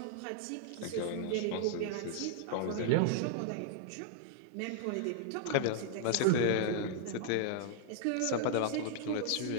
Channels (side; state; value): both; different; correlation -0.01